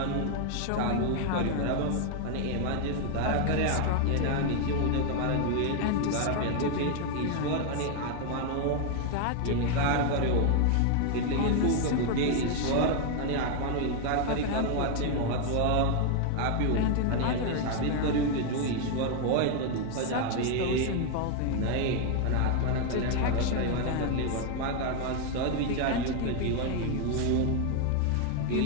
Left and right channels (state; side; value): different; both; correlation 0.00